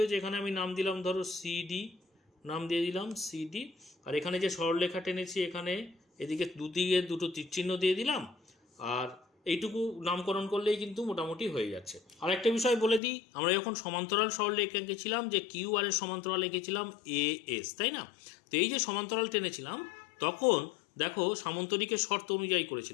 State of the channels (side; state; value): right; drops out; at 13.0 s